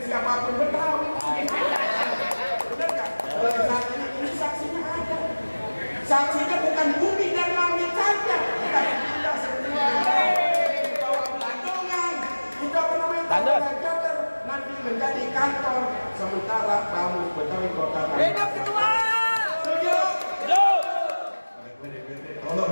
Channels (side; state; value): both; inverted; correlation -1.00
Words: siapapun Betawi. Bener nggak? Saksinya ini saksinya ada. Saksinya bukan bumi dan langit saja. Kita semua bawa pelandungan. Kita Jater nanti menjadi kantor sementara Bamus Betawi Kota Tangerang. Hidup ketua. Setuju? Hidup. Tolong